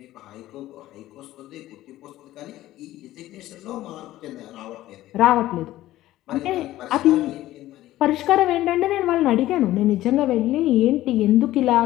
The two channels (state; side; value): quieter; right; 15.2 dB